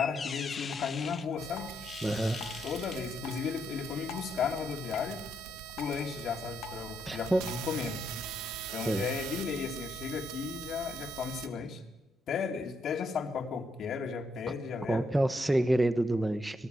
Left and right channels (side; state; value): both; normal; correlation 0.77